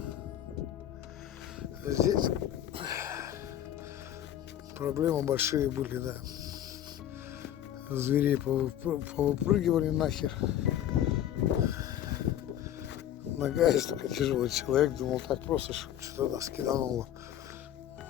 Здесь проблемы большие были, да. Зверей повыпрыгивали нахер. Нога есть только тяжелый человек. Думал, так просто что-то нас кидануло.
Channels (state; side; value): quieter; right; 11.3 dB